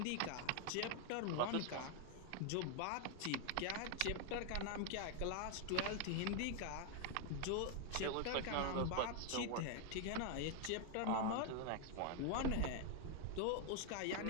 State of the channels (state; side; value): different; both; correlation 0.00